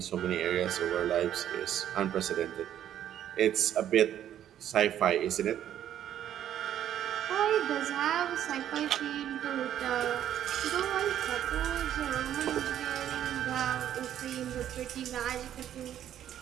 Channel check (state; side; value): quieter; left; 10.8 dB